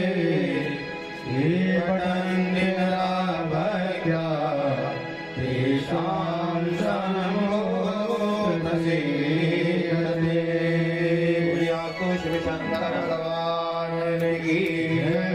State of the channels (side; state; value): both; identical; correlation 1.00